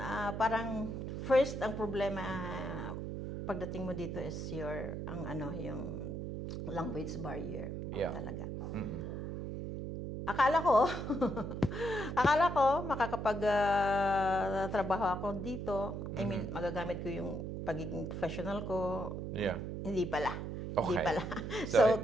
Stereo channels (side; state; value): right; noise; hum, 5 dB below the sound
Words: Parang first, ang problema pagdating mo dito is yung language barrier. Yeah. Talaga. Akala ko makakapag-trabaho ako dito. I mean, magagamit ko yung pagiging professional ko. Yeah. Hindi pala. Okay. Hindi pala. So,